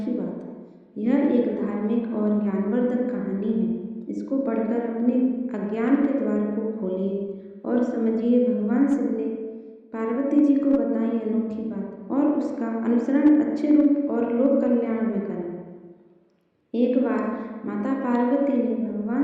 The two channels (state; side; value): identical; both; correlation 1.00